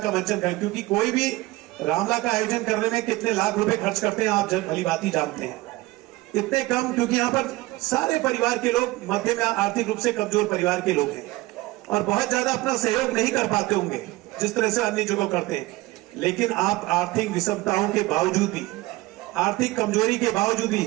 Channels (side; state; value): left; quieter; 19.8 dB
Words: मंचन कर, क्योंकि कोई भी रामला का आयोजन करने में कितने लाख रुपए खर्च करते हैं आप भली बात ही जानते हैं। इतने कम, क्योंकि यहाँ पर सारे परिवार के लोग मध्यम या आर्थिक रूप से कमजोर परिवार के लोग हैं और बहुत ज्यादा अपना सहयोग नहीं कर पाते होंगे जिस तरह से अन्य जगह करते हैं। लेकिन आप आर्थिक विषमताओं के बावजूद भी, आर्थिक कमजोरी के बावजूद भी,